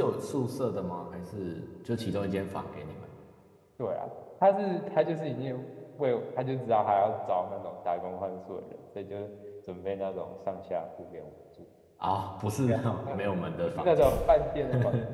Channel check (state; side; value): identical; both; correlation 1.00